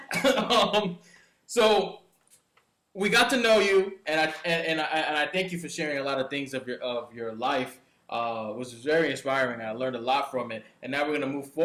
So we got to know you, and I thank you for sharing a lot of things of your life. It was very inspiring. I learned a lot from it. And now we're going to move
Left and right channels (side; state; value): both; identical; correlation 1.00